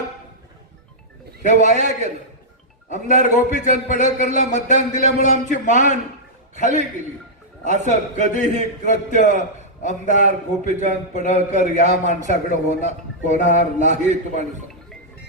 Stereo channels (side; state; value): both; normal; correlation -0.10